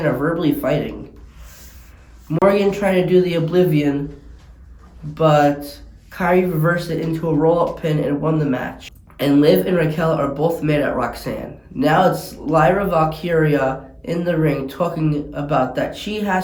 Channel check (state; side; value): identical; both; correlation 1.00